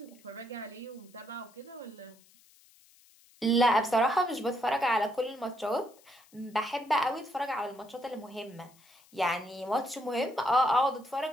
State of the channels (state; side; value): noise; left; hiss, 28 dB below the sound